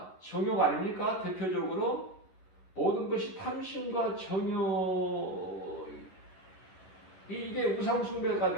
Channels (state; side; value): late; right; 11 ms